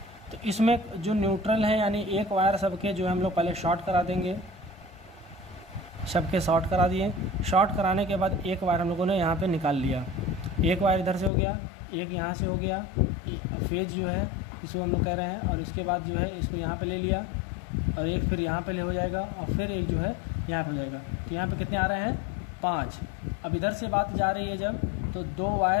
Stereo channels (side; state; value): right; drops out; at 11.3 s